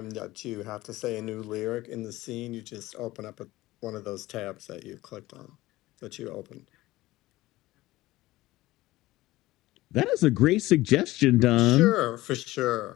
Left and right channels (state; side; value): quieter; right; 17.9 dB